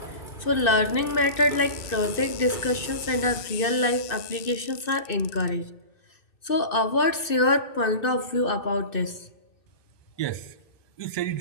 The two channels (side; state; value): right; late; 2.6 ms